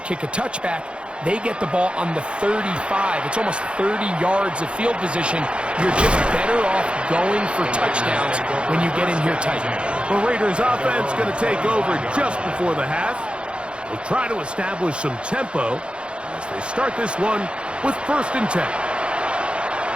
a touchback, they get the ball on the 35. It's almost 30 yards of field position. You're just better off going for touchdowns when you get in here tight. The Raiders offense going to take over just before the half. We'll try to establish some tempo as they start this one with 1st and 10.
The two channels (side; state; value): left; late; 0.057 ms